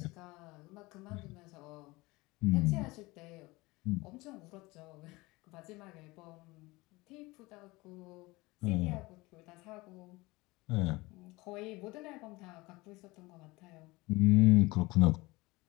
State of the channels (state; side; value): quieter; right; 22.1 dB